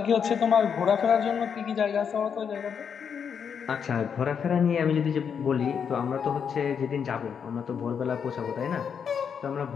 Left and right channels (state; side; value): quieter; right; 7.1 dB